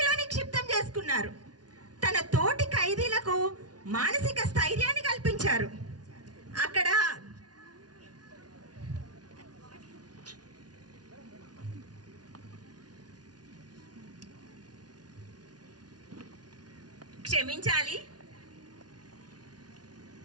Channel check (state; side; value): late; left; 0.69 ms